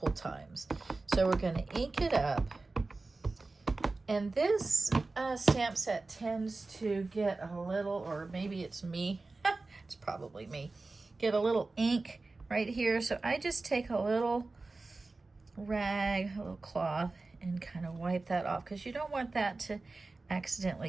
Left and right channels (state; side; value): quieter; left; 3.5 dB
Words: times. So we're going to ink it up. And this stamp set tends to get a little, or maybe it's me, it's probably me, get a little ink right here. So I just take a little rag, a little cloth, and kind of wipe that off because you don't want that to